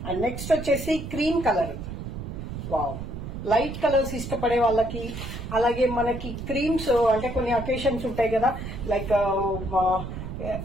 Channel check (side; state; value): right; noise; rumble, 7 dB below the sound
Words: And next వచ్చేసి క్రీమ్ కలర్. వావ్, లైట్ కలర్స్ ఇష్టపడే వాళ్ళకి, అలాగే మనకి క్రీమ్స్ అంటే కొన్ని అకేషన్స్ ఉంటాయి కదా, లైక్